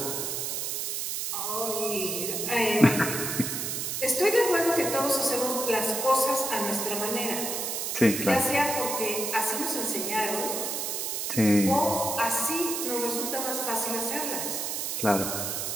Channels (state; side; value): noise; right; hiss, 2 dB below the sound